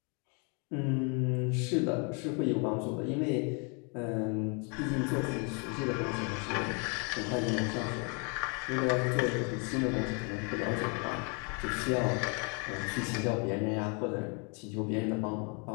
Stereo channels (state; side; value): quieter; right; 35.4 dB